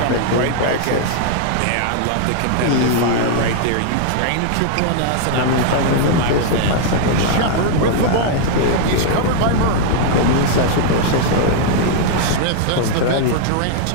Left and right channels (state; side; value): different; both; correlation -0.01